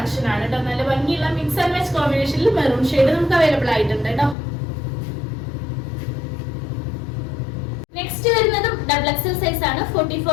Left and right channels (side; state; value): right; drops out; at 4.4 s